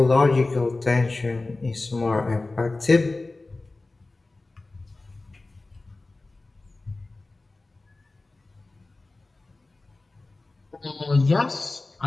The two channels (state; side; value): quieter; right; 3.2 dB